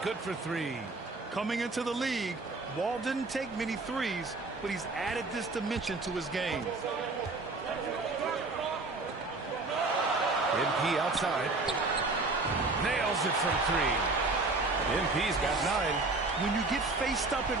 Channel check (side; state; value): left; quieter; 3.4 dB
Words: for 3. Coming into the league, Wall didn't take many threes, but he's added this dimension to his game. MP outside. Nails it from 3. MP's got 9. When you get faced up at